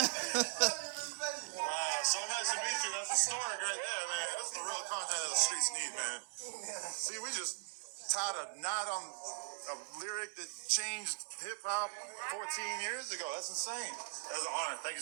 Wow, so nice to meet you. That's historic right there, man. That's the real content that the streets need, man. See, we just tied a knot on a lyric that changed hip-hop 14 years ago. That's insane. That was an honor. Thank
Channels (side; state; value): left; silent; digital silence